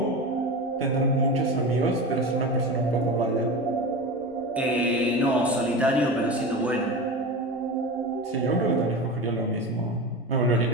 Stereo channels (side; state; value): both; normal; correlation 0.26